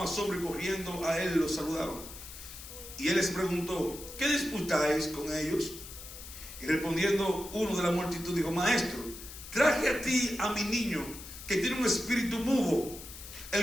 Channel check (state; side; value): noise; left; hiss, 13 dB below the sound